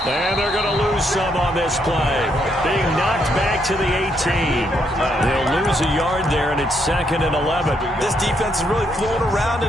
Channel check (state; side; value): normal; both; correlation 0.75